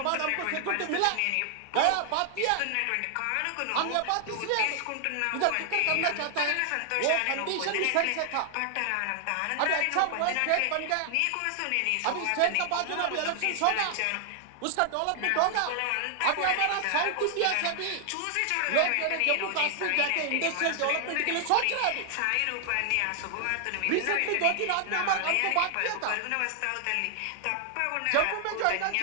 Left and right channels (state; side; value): different; both; correlation 0.00